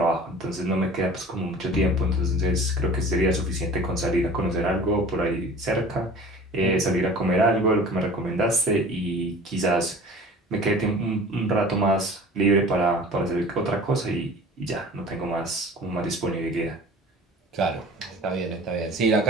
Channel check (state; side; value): normal; both; correlation 0.43